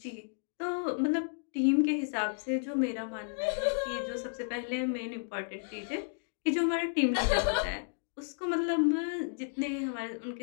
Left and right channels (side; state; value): right; silent; digital silence